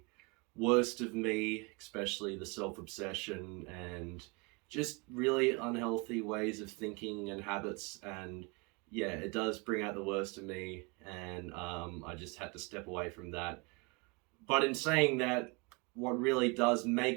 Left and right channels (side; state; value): left; quieter; 29.7 dB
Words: worst of me, especially the self-obsession and just really unhealthy ways of thinking and habits. And yeah, it does bring out the worst of me, and I just had to step away from that. But in saying that, what really does